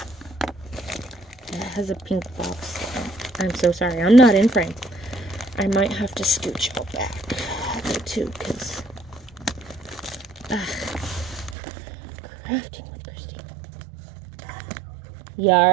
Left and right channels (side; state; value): left; drops out; at 11.6 s